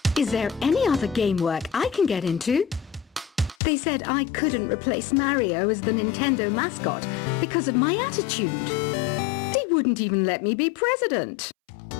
Is there any other game work I can get into? They said I couldn't replace Mario as the Nintendo mascot because of my attitude. They wouldn't even let me be president.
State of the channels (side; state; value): right; drops out; at 3.6 s